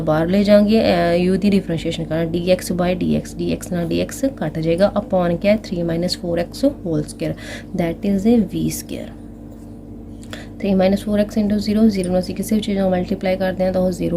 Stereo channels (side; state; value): both; identical; correlation 1.00